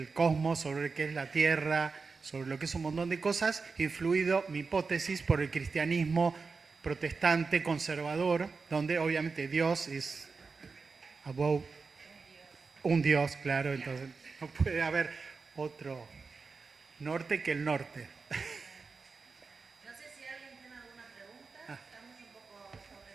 cosmos, sobre lo que es la Tierra, sobre lo que es un montón de cosas, influido, mi hipótesis, por el cristianismo protestante, conservador, donde obviamente Dios es above, un Dios, claro, entonces no puede haber otro norte que el norte. No sé si alguien tiene alguna pregunta, estamos un poco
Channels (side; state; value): left; quieter; 4.6 dB